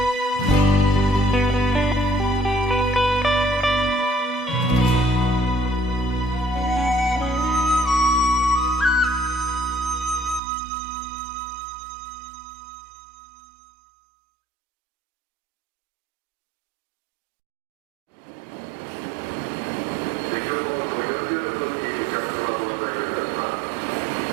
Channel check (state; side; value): drops out; left; at 10.4 s